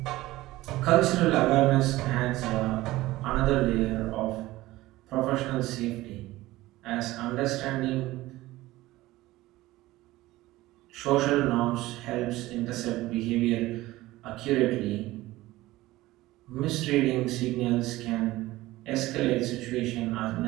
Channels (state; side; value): quieter; left; 17.7 dB